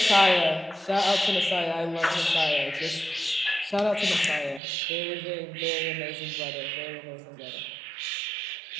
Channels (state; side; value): drops out; left; at 4.6 s